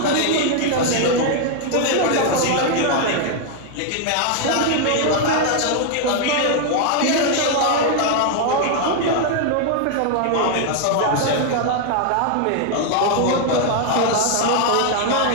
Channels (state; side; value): different; both; correlation 0.00